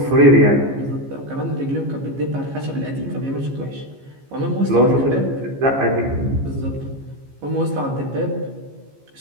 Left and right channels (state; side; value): late; left; 15 ms